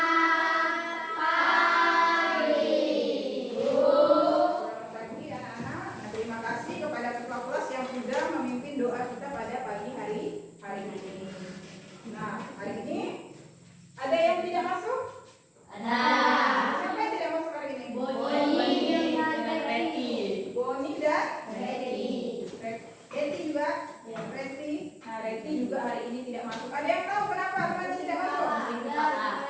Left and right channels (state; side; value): identical; both; correlation 1.00